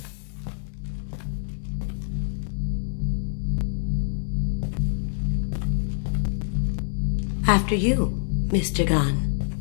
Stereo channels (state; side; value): silent; right; digital silence